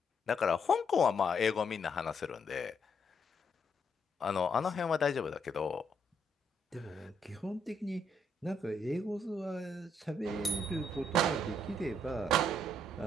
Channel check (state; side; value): normal; both; correlation 0.74